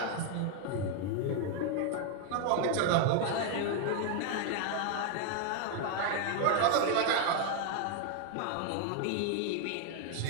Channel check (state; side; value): different; both; correlation 0.00